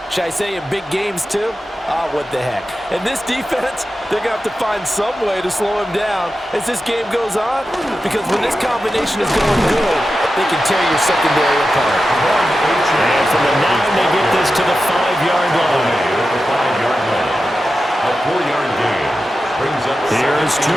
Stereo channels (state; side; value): normal; both; correlation 0.92